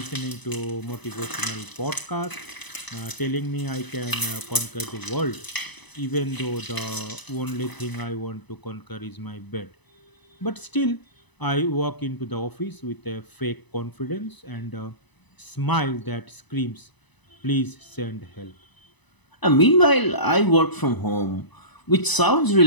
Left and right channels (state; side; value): late; right; 1.0 ms